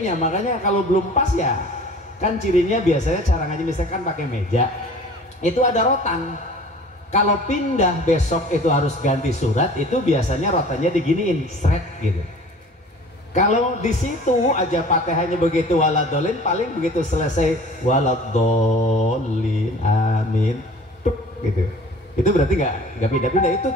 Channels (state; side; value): normal; both; correlation 0.46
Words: Makanya kalau belum pas ya kan cirinya biasanya cara ngaji misalkan pakai meja itu ada rotan. Kalau pindah besok itu harus ganti surat, itu biasanya rotannya diginiin seret gitu. Kalau di situ aja Fatihahnya begitu waladhdallin, paling begitu selesai waladhdallin amin tuk gitu. Itu berarti nggak pindah-pindah. Itu